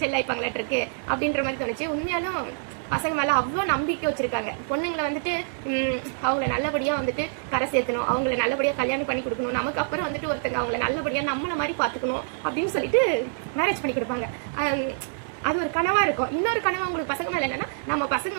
செல்லாய்ப்பாங்களாட்டு இருக்கு அப்படின்ற மாதிரி தோணுச்சு. உண்மையாலும் பசங்க மேல அவ்வளோ நம்பிக்கை வச்சிருக்காங்க. பொண்ணுங்களை வந்துட்டு அவங்கள நல்லபடியா வந்துட்டு கரை சேர்த்தணும், அவங்கள நல்லபடியா கல்யாணம் பண்ணி கொடுக்கணும், நமக்கு அப்புறம் வந்துட்டு ஒருத்தங்க அவங்கள நல்லபடியா நம்மள மாதிரி பாத்துக்கணும் அப்படின்னு சொல்லிட்டு மேரேஜ் பண்ணி கொடுப்பாங்க. அது ஒரு கனவா இருக்கும். இன்னொரு கனவா உங்களுக்கு பசங்க மேல என்னன்னா, நம்ம பசங்க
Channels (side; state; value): left; silent; digital silence